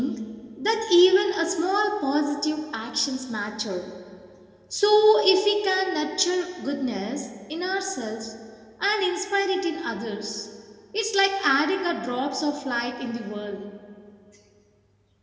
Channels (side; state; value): both; identical; correlation 1.00